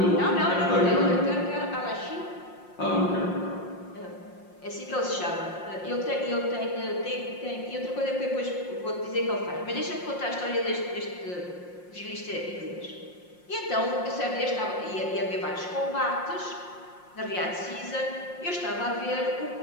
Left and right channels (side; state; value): right; late; 5.6 ms